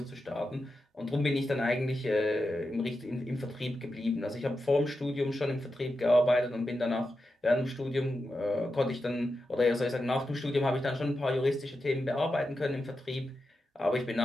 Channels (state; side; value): normal; both; correlation 0.89